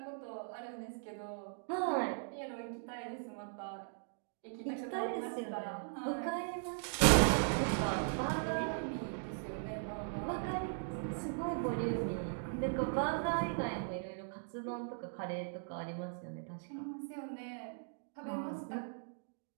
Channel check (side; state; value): left; silent; digital silence